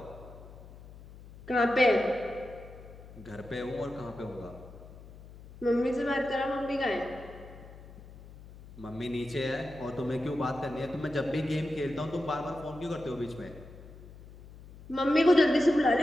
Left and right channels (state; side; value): noise; left; hum, 18 dB below the sound